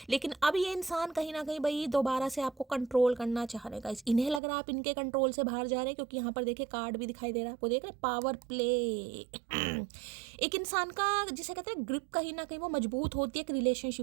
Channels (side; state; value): left; drops out; at 4.4 s